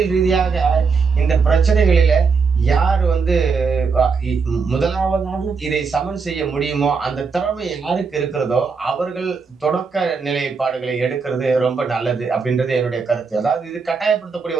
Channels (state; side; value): quieter; left; 5.1 dB